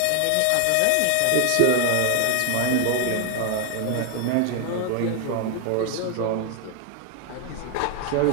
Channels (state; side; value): different; both; correlation 0.00